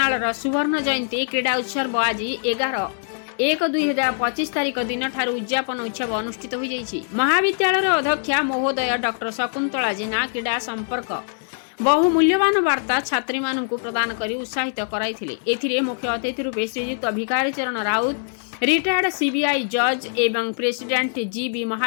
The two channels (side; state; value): right; silent; digital silence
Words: सुवर्ण जयंती क्रीड़ा उत्सव आज 11/1/2025 तारिख दिन ठारू उद्यापन उत्सव अनुष्ठित हो जाइछि। महाविद्यालय अध्यक्षा महोदय डॉक्टर शकुंतला जेना क्रीड़ा संपर्क बहु मूल्यवान वार्ता छात्री मानू प्रदान कर उत्साहित कराइथिले। एथिरे मुख्य अतिथि रूपे श्रीयुक्त भिखारी चरण राउत रिटायर्ड सीबीआई जज एवं प्रेसिडेंट जीबी